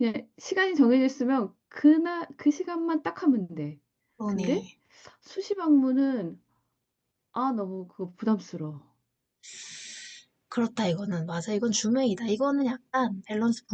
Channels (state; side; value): identical; both; correlation 1.00